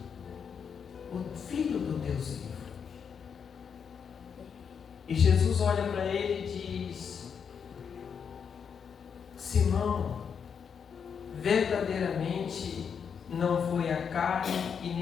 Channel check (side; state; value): right; quieter; 6.9 dB